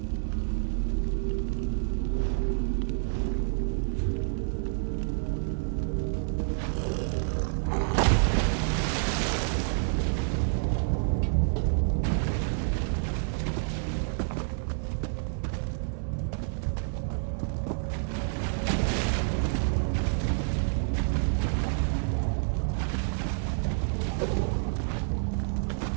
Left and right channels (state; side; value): silent; left; 59 dB below the other